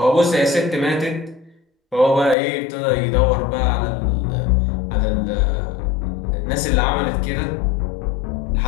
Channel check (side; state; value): right; drops out; at 2.4 s